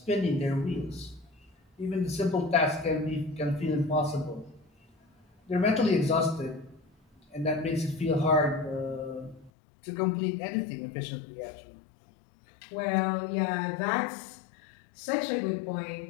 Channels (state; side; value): drops out; right; at 9.5 s